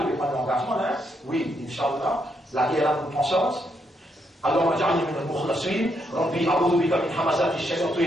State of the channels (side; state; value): both; normal; correlation 0.78